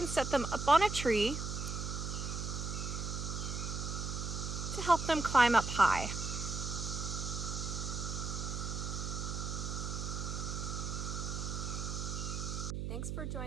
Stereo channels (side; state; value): right; noise; hum, 3 dB below the sound